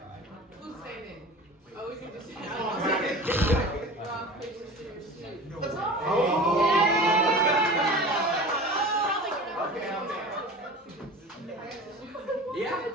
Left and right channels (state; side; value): normal; both; correlation 0.36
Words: Who's saying it? Oh, we can just say it. Rock, paper, scissors, shoot. Oh. Okay. Yeah.